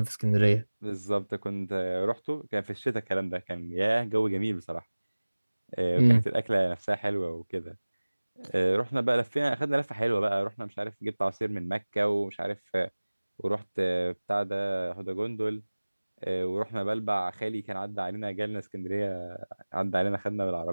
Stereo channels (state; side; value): inverted; both; correlation -1.00